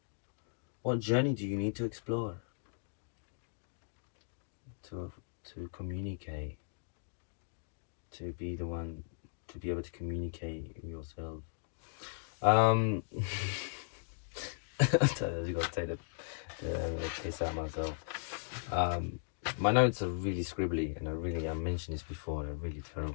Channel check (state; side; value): silent; right; digital silence